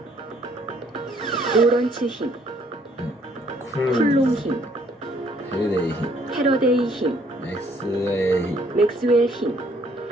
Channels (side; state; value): both; normal; correlation 0.64